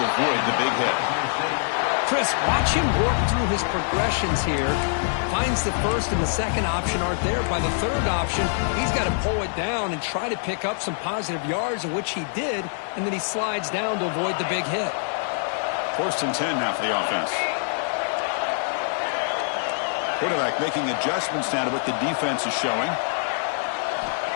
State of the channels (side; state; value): right; silent; digital silence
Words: avoid the big hit. Chris, watch him work through his progressions here. Finds the first and the second option aren't there. By the third option, he's got to pull it down and try to pick up some positive yards, of which he did, and then he slides down to avoid the big hit. 1st and 10 now for the offense. Quarterback making adjustments now to what the defense is showing.